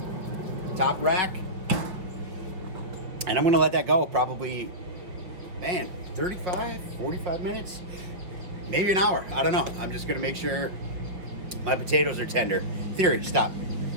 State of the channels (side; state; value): left; late; 5.4 ms